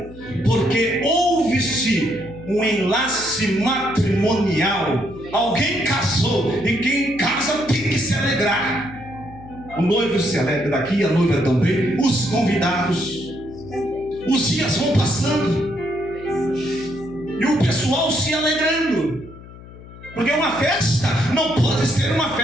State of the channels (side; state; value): left; noise; hum, 18 dB below the sound